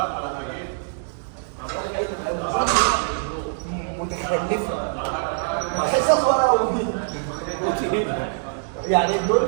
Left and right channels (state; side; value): silent; left; digital silence